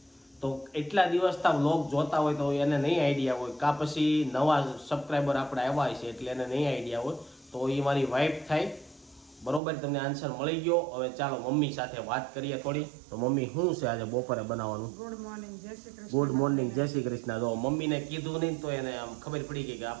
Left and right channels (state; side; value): drops out; left; at 9.6 s